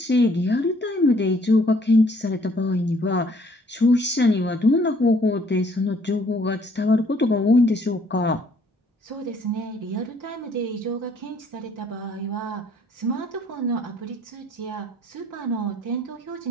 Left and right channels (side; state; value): both; normal; correlation 0.62